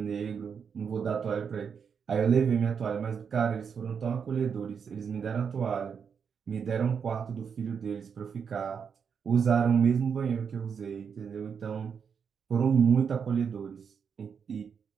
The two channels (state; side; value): quieter; left; 6.7 dB